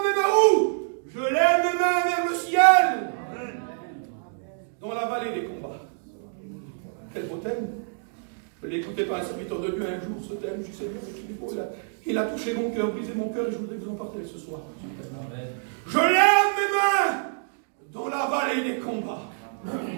mes mains où? Je lève mes mains vers le ciel. Dans la vallée des combats. Quel beau thème. Je l'ai écouté par un serviteur de Dieu un jour, ce thème. Je suis Seigneur, il a touché mon cœur, brisé mon cœur, et je voudrais vous en partager ce soir. Amen. Je lève mes mains dans la vallée des combats.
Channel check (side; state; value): left; silent; digital silence